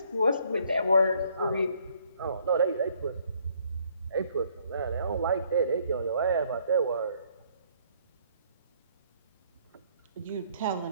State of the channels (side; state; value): both; inverted; correlation -0.65